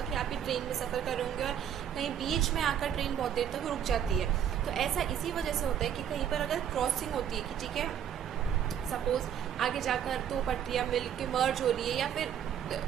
कि आप भी ट्रेन में सफ़र कर रहे होंगे और कहीं बीच में आकर ट्रेन बहुत देर तक रुक जाती है। तो ऐसा इसी वजह से होता है कि कहीं पर अगर क्रॉसिंग होती है कि ठीक है सपोज आगे जाकर दो पटरियाँ मिल के मर्ज हो रही है या फिर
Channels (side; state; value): left; quieter; 9.3 dB